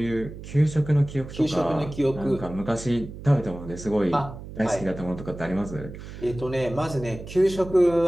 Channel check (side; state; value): right; noise; hum, 12 dB below the sound